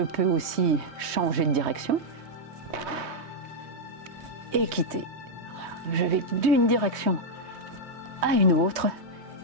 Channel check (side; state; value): left; late; 3.2 ms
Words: aussi changer de direction et quitter. Je vais d'une direction à une autre